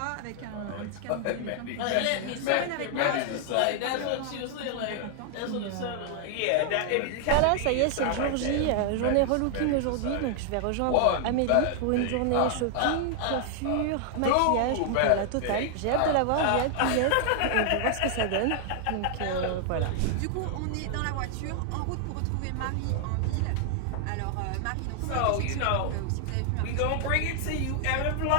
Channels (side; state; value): both; different; correlation 0.00